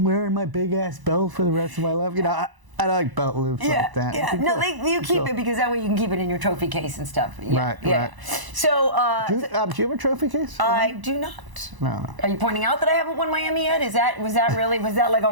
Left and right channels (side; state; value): left; late; 1.0 ms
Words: wearing my big ass belt for the rest of my life. I like belt loops like that. Yeah, no, you keep it because that way you can keep it in your trophy case and stuff. Yeah, right. So, do you have a trophy case? I do not. No. Are you pointing out that I haven't won my Emmy yet? Was that like a